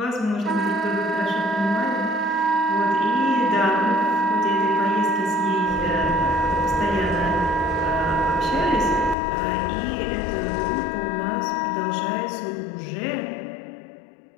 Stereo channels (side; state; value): right; drops out; at 9.2 s